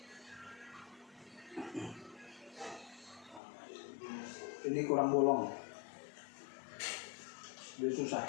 Ini kurang bolong, dia susah.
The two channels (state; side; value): drops out; right; at 3.4 s